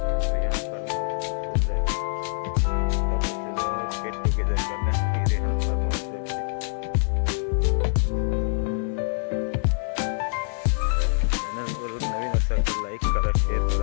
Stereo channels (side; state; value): right; silent; digital silence